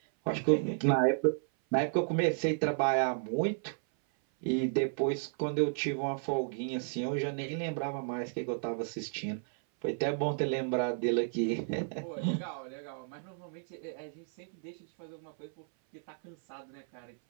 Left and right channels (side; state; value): left; silent; 56 dB below the other